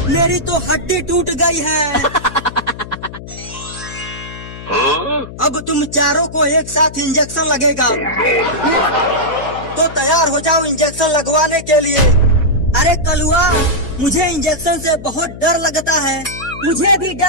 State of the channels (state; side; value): noise; left; hum, 13 dB below the sound